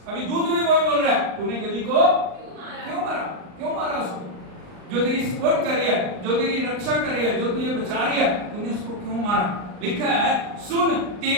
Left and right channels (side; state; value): left; late; 39 ms